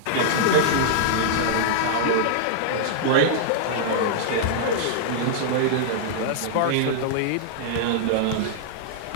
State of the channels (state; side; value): different; both; correlation -0.01